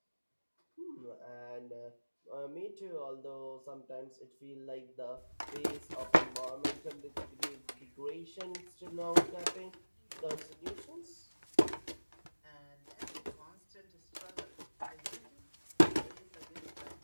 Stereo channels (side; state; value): both; inverted; correlation -1.00